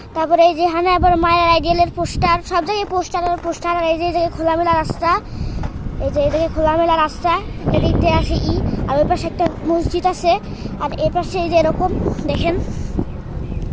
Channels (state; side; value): identical; both; correlation 1.00